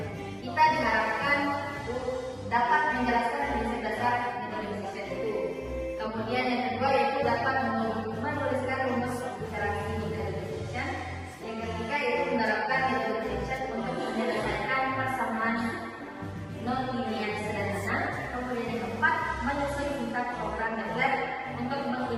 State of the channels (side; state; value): both; identical; correlation 1.00